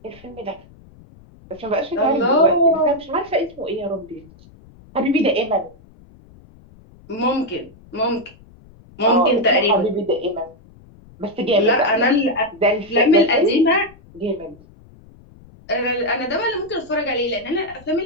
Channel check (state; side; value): noise; left; rumble, 24 dB below the sound